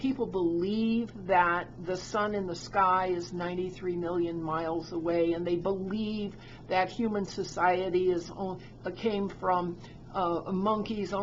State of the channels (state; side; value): identical; both; correlation 1.00